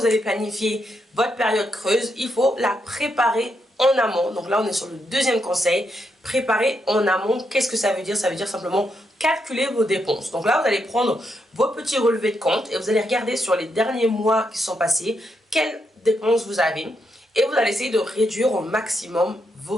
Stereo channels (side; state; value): both; normal; correlation 0.81